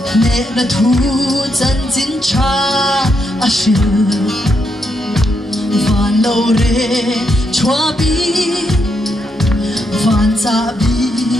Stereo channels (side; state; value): both; normal; correlation 0.80